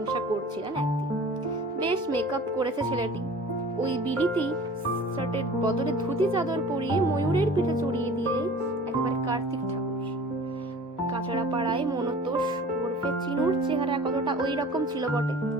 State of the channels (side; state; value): both; normal; correlation 0.44